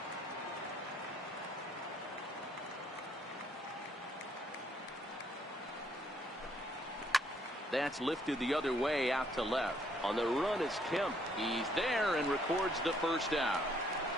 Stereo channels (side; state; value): both; normal; correlation 0.68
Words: That's lifted the other way out to left. On the run is Kemp. He's there and records the first out.